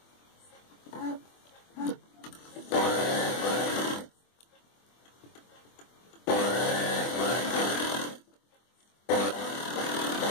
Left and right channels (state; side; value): late; right; 24 ms